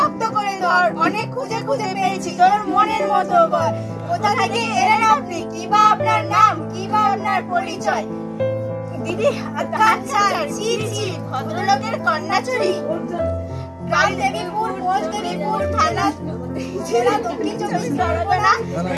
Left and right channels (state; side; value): identical; both; correlation 1.00